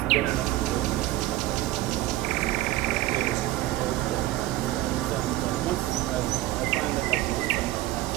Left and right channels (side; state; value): left; quieter; 16.2 dB